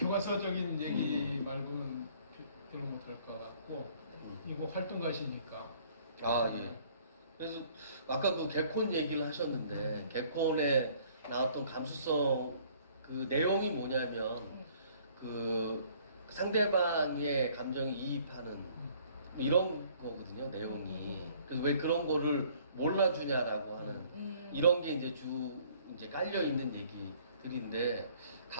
얘기 말고는 별로 못할 것 같고 이거 활동가시니까 예. 그래서 아까 그 개콘 얘기를 하셨는데 개콘에 나왔던 감수성 그 내용이 뭐냐면 그 상대방의 감정에 이입하는 이런 거거든요, 내용이. 그래서 왜 그런 거를 몰라주냐라고 하는 이런 게 이제 깔려 있는 얘기들인데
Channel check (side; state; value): both; inverted; correlation -0.59